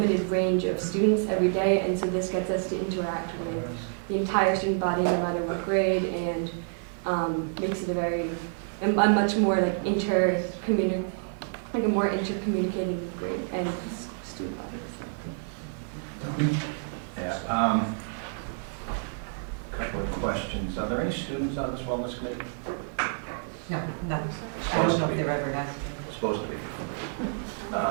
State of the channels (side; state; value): left; silent; 55 dB below the other